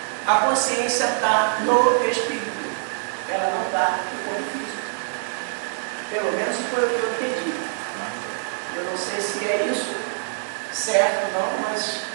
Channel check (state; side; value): silent; left; digital silence